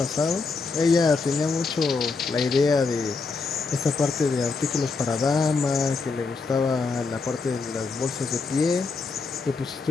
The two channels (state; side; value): quieter; right; 4.3 dB